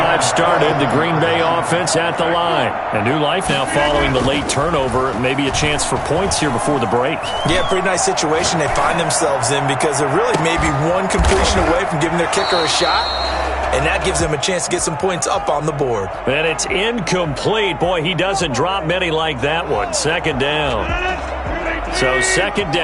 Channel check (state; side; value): identical; both; correlation 1.00